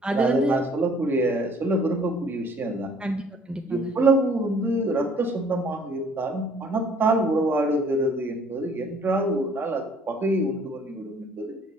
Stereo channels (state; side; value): normal; both; correlation 0.58